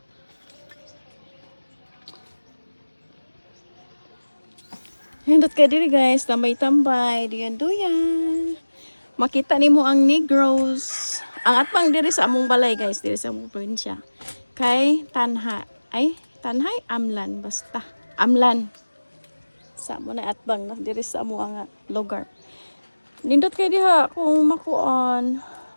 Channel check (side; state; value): both; inverted; correlation -1.00